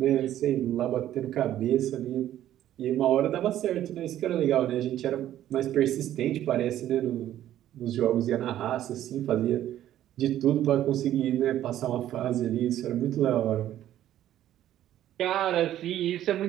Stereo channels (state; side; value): quieter; left; 12.3 dB